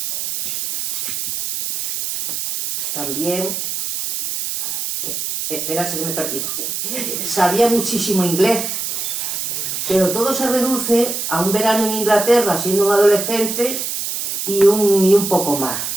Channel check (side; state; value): right; noise; hiss, 3 dB below the sound